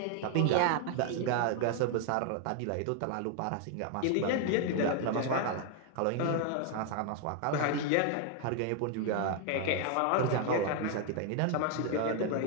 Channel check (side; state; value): both; different; correlation 0.00